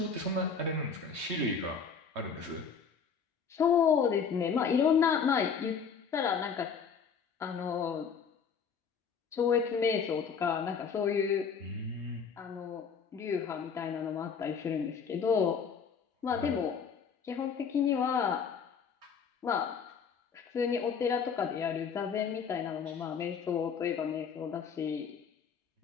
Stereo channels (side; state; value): right; quieter; 6.3 dB